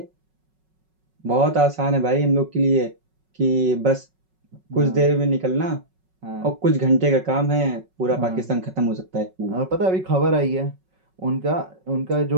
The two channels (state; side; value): late; left; 5.4 ms